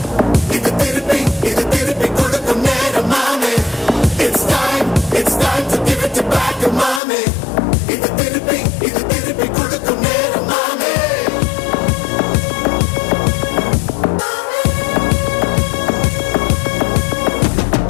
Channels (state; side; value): drops out; right; at 7.0 s